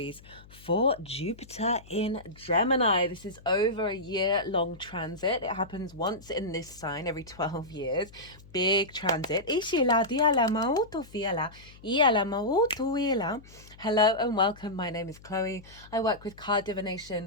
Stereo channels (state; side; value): noise; left; hum, 22 dB below the sound